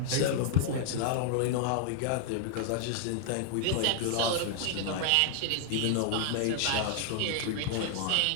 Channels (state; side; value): different; both; correlation 0.00